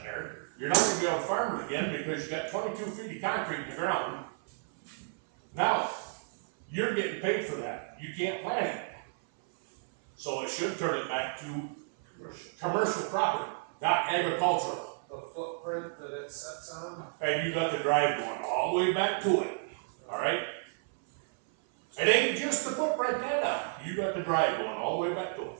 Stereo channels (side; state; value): left; silent; 56 dB below the other